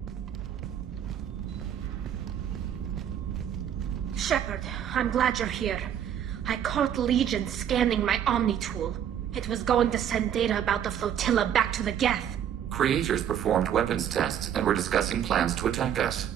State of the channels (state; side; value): quieter; left; 9.6 dB